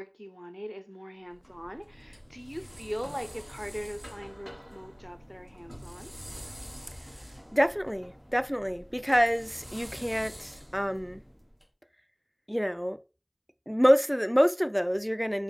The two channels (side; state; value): both; identical; correlation 1.00